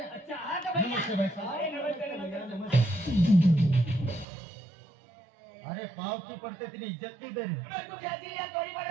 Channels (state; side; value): drops out; left; at 4.2 s